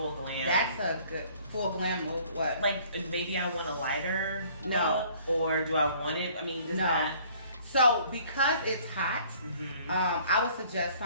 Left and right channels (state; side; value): inverted; both; correlation -0.56